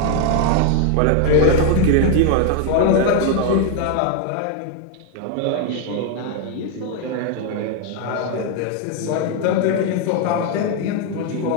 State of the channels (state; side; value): different; both; correlation 0.00